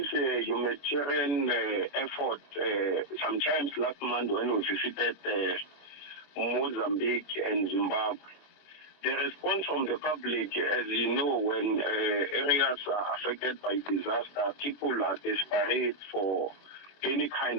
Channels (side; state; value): right; late; 21 ms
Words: humanitarian effort sometimes last month when we visited Mozambique and Zimbabwe. The response from the public, as you know, when areas are affected by disaster, people are desperate for any